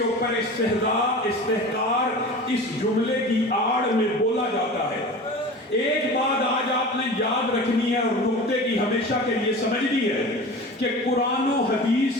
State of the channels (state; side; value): normal; both; correlation 0.35